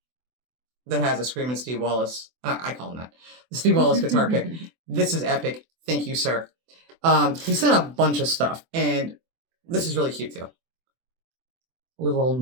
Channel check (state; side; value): late; left; 24 ms